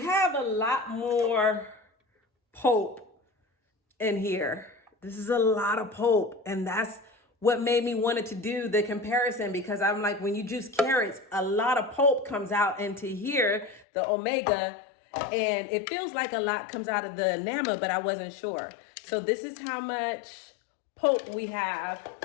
have a lot more pulp in here. This is a lot of pulp, and that's what made me wanted to do the comparison, because I'm like, when you juice carrots, a lot of pulp comes out into here, the Omega, and it feels like a lot comes out of the Nama, but I wasn't sure. So this is how much pulp we have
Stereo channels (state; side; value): drops out; right; at 13.9 s